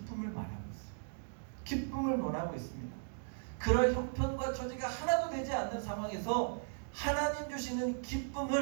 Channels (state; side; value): silent; left; digital silence